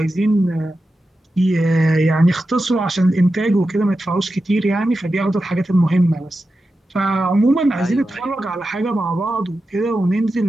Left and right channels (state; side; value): normal; both; correlation 0.91